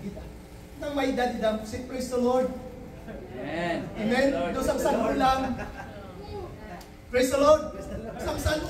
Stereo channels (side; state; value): both; identical; correlation 1.00